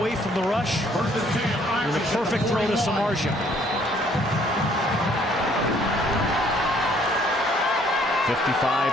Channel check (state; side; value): normal; both; correlation 0.63